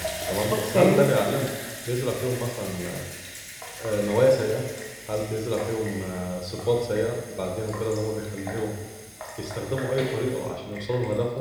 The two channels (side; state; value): both; identical; correlation 1.00